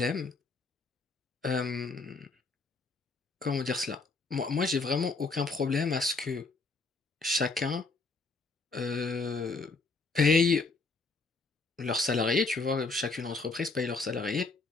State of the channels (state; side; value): quieter; right; 3.8 dB